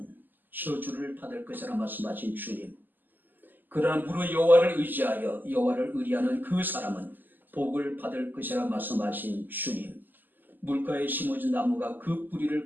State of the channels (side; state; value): left; late; 0.088 ms